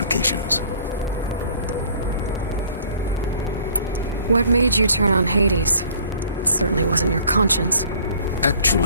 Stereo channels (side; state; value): both; inverted; correlation -0.54